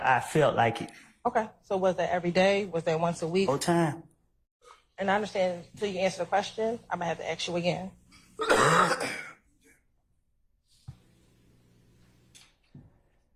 felt like it. Okay. So was that every day? Was that once a week? Whole time. And I understand until you answer the question, I'm going to have to ask you again.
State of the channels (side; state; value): both; identical; correlation 1.00